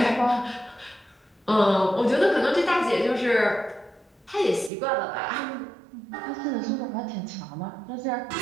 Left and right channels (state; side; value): drops out; left; at 4.7 s